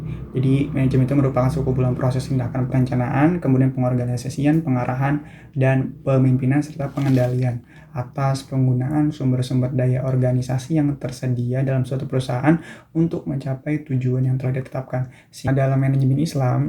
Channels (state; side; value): identical; both; correlation 1.00